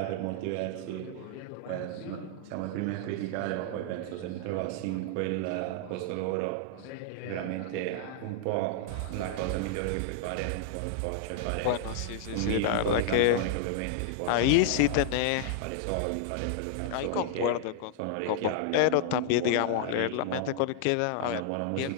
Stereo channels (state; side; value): different; both; correlation -0.01